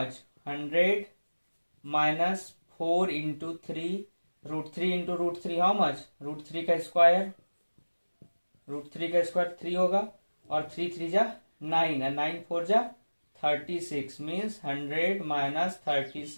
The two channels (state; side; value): inverted; both; correlation -1.00